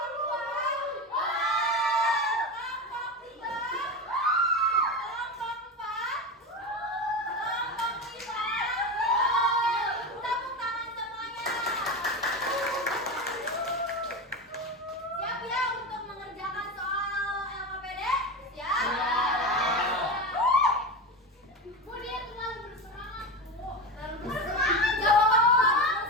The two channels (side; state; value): both; normal; correlation 0.21